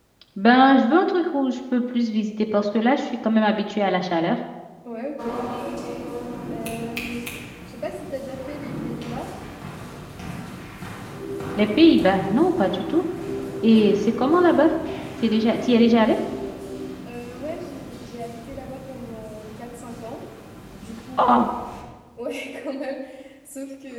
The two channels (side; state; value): both; identical; correlation 1.00